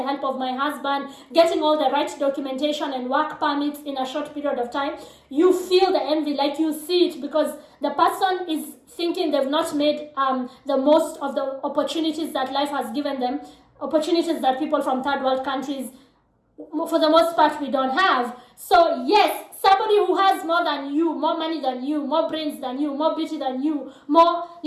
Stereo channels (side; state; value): both; identical; correlation 1.00